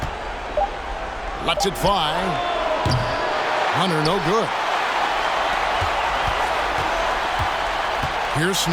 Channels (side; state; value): both; identical; correlation 1.00